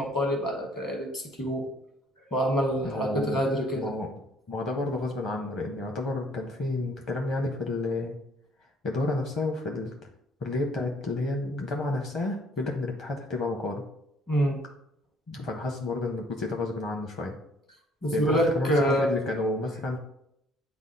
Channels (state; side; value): normal; both; correlation 0.61